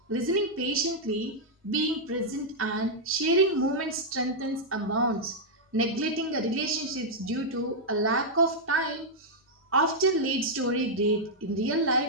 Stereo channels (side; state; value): both; normal; correlation -0.05